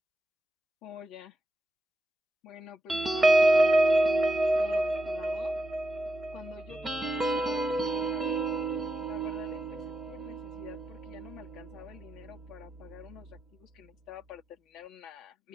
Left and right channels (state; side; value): normal; both; correlation 0.88